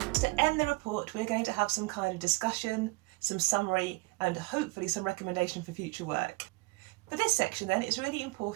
To end the report, we're going to have some kind of discussion, some summary, and hopefully some recommendation for future work. For this section then, it's really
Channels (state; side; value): quieter; left; 25.2 dB